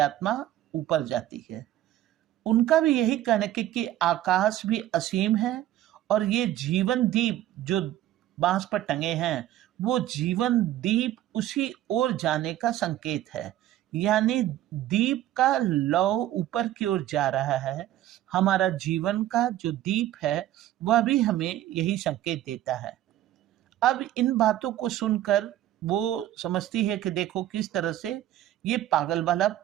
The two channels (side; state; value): left; quieter; 13.3 dB